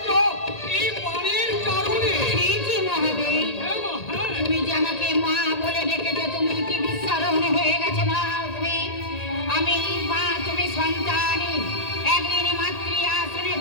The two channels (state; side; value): late; right; 1.8 ms